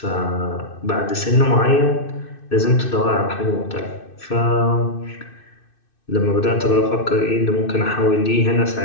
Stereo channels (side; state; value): right; late; 2.6 ms